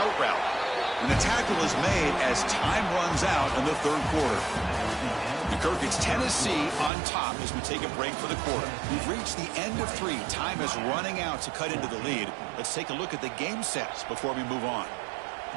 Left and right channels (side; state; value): left; drops out; at 6.9 s